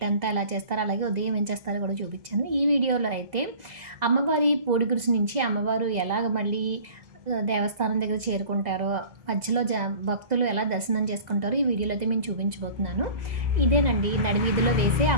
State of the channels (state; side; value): late; left; 2.0 ms